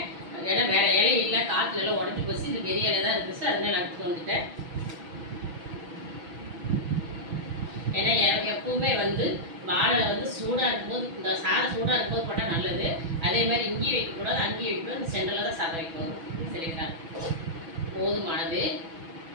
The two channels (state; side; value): late; left; 6.1 ms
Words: ஏன்னா வேறு இலை இல்லை, காற்றுல எல்லாம் உடஞ்சி போச்சு. இது பெரிய இலை தான் இருந்துச்சு, அதனால எடுத்துட்டு வந்துட்டேன். ஏன்னா எப்பவுமே வந்து வாழை வந்து சூடாக இருக்கும்போது, இந்த சாதம் சூடாக இருக்கும்போது போட்டால் நல்லது. அதே மாதிரி இங்கேயும் வைக்கக்கூடாது, அங்கேயும் வைக்கக்கூடாது. இந்த சென்டரில் தான் சாதம் வைக்கணும் சரிங்களா. போதுமானது